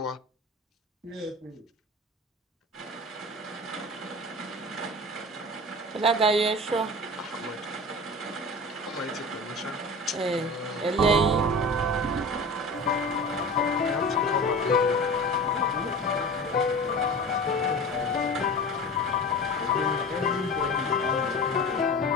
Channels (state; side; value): normal; both; correlation 0.34